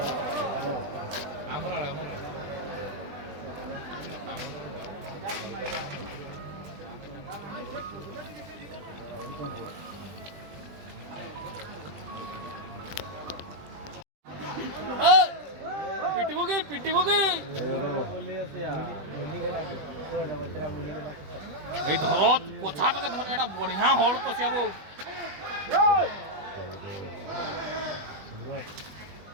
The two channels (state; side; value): late; left; 20 ms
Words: आमरा पिटी होगी এই ধরত কোথা থেকে ধরে এটা বড়িয়া হল তো সিয়াবো